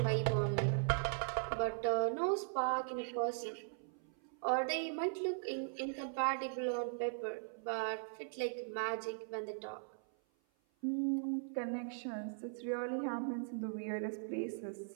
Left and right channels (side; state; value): left; silent; 52 dB below the other